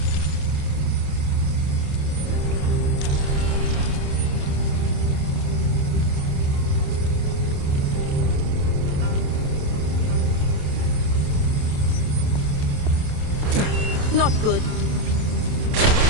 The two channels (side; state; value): left; late; 28 ms